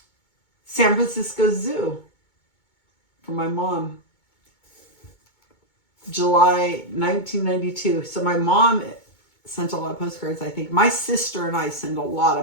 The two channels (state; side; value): late; right; 2.2 ms